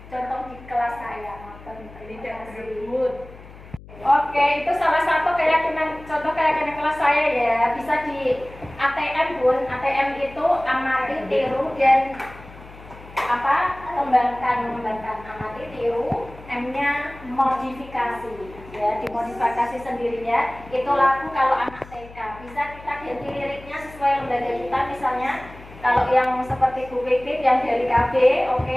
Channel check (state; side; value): noise; left; hum, 19 dB below the sound